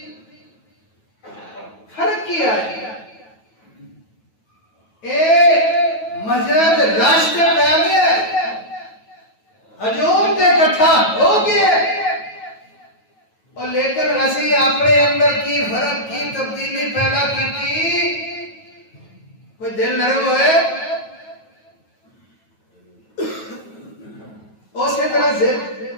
فرق کیا ہے؟ اے مسجد راشتے پہ گیا، ہجوم تے اکٹھا ہو گیا، اور لیکن اسی اپنے اندر کی فرق کی تبدیلی پیدا کی تھی، کوئی دل نرم ہوئے اسی طرح سے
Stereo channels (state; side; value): late; right; 9.2 ms